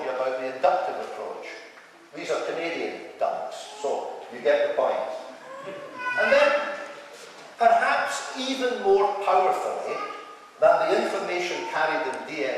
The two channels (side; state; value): both; identical; correlation 1.00